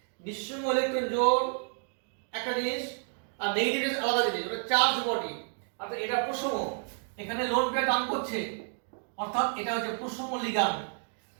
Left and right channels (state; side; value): silent; left; 57 dB below the other